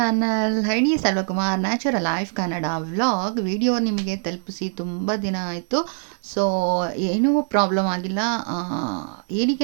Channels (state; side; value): silent; left; 63 dB below the other